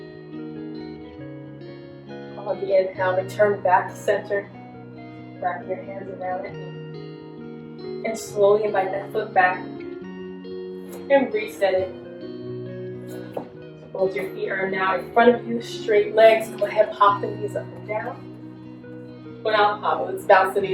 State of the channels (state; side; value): identical; both; correlation 1.00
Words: On the inhale, return back to center, wrapping your hands around the knee. And slowly invite that foot back and reset it. Both your feet are now in front of you, straight legs. Go ahead, pop the knees up and down. Well, now pop, let's bounce the